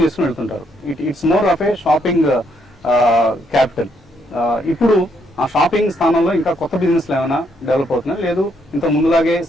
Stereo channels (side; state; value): both; normal; correlation 0.73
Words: చేసుకుని వెళ్తుంటారు. It's more of A shopping capital. ఇప్పుడు ఆ షాపింగ్ స్థానంలో ఇంకా కొత్త బిజినెస్లు ఏమైనా డెవలప్ అవుతున్నాయి, లేదు ఇంత ముందులాగే